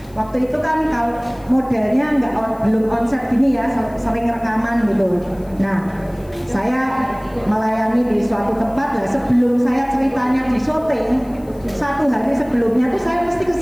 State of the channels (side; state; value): left; noise; hiss, 28 dB below the sound